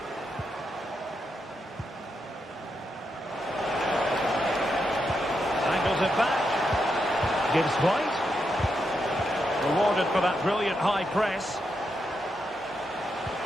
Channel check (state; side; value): normal; both; correlation 0.83